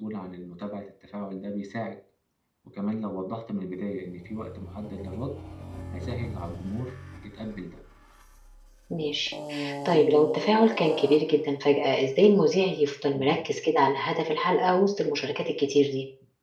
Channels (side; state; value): both; identical; correlation 1.00